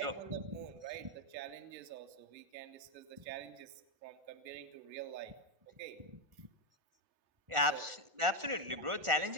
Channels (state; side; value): late; left; 1.4 ms